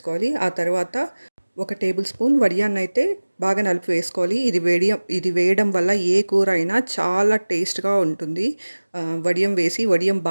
ఆ తర్వాత ఒక టేబుల్ స్పూన్ వడియాన్నైతే బాగా నలిపి వేసుకోవాలి. ఇది వేయడం వల్ల ఏ కూర అయినా చాలా టేస్ట్గా ఉంటుంది. వడియం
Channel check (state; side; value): inverted; both; correlation -1.00